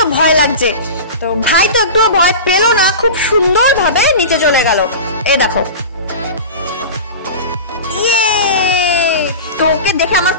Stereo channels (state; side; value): inverted; both; correlation -0.30